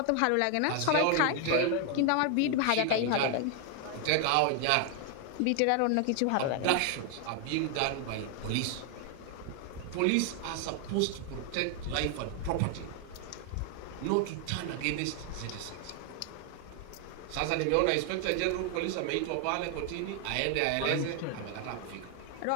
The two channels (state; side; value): different; both; correlation 0.00